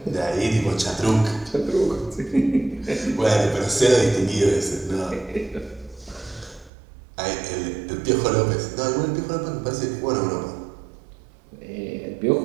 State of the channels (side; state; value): left; drops out; at 6.7 s